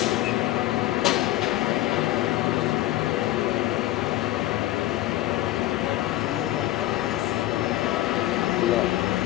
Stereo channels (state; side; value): quieter; right; 15.4 dB